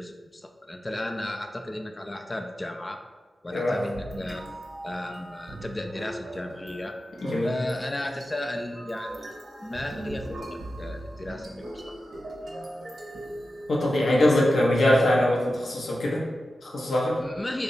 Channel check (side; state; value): both; normal; correlation 0.92